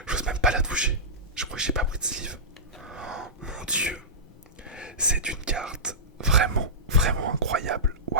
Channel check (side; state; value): both; normal; correlation -0.17